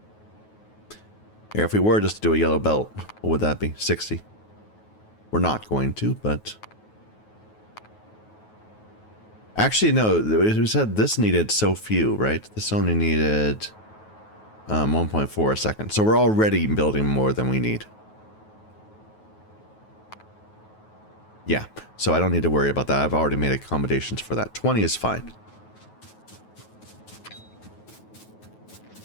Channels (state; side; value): late; right; 9.3 ms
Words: Here, if we were just to do a yellow belt, what would that be? 60. We're not going to, but Actually, no, we said this needed so few, right? This only needed 1.4 a second. So we're already building more than we need. Yeah, so I don't need to worry about that. I've already made accommodations for that. 20 is fine.